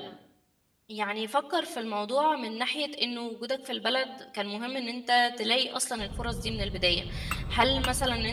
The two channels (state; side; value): identical; both; correlation 1.00